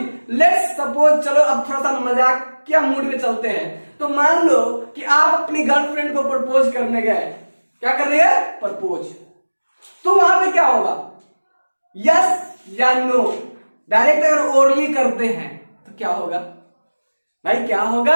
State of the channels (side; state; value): both; inverted; correlation -1.00